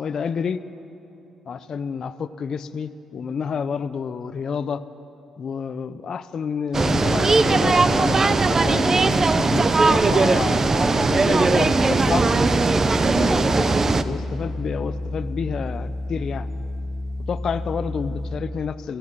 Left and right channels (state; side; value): normal; both; correlation 0.88